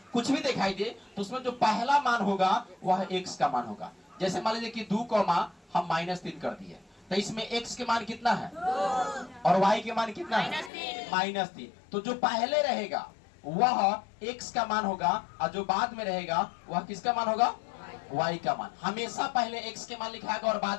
कुछ भी दिखाई दे, तो उसमें जो पहला मान होगा वह x का मान होगा। जैसे मान लीजिए कि 2, हम -3 कर दिए, तो इसमें x के मान कितना है? और y के मान कितना है? -3। तो जो पहले रहेगा वह x का मान होगा, और जो बाद में रहेगा वह किसका मान होगा? y का मान। हमेशा पहले x के मान लिखाएगा और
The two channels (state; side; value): drops out; right; at 10.7 s